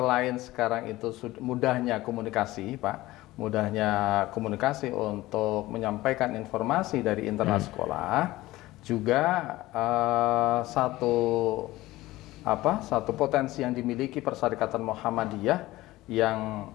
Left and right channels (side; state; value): right; quieter; 17.8 dB